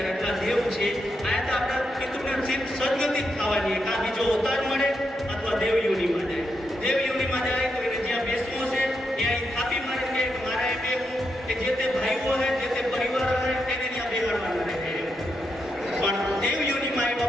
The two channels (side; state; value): both; normal; correlation 0.83